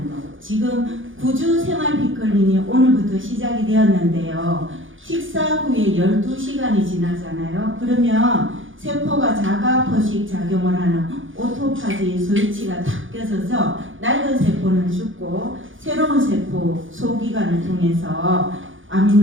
거. 지금 구주 생활 피클린이 오늘부터 시작이 되었는데요. 식사 후에 12시간이 지나잖아요. 그러면 세포가 자가 포식 작용을 하는 오토파지 스위치가 탁 껴져서 낡은 세포는 죽고 새로운 세포 소기관을 통해서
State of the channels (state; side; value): late; left; 0.57 ms